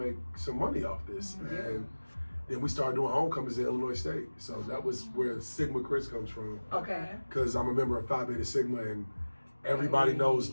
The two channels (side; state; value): both; inverted; correlation -1.00